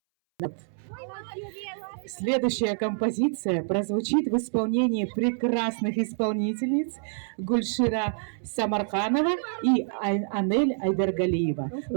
Следующая композиция прозвучит в исполнении прекрасных исполнительниц Гульшира Самарханова и Анель Айдаргалиева,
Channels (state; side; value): silent; left; 60 dB below the other